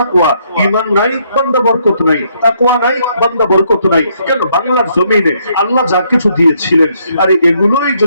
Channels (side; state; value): both; inverted; correlation -0.71